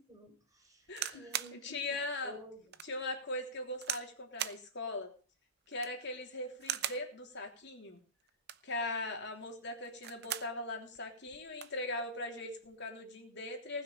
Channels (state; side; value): normal; both; correlation -0.20